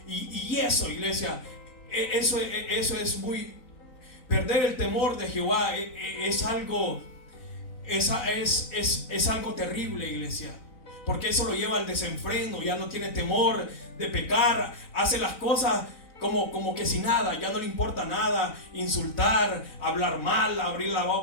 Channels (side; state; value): right; late; 4.0 ms